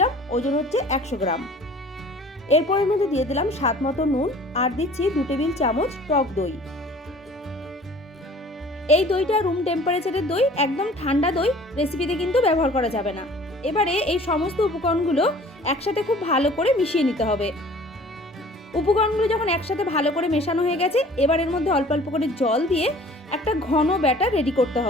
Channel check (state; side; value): normal; both; correlation 0.49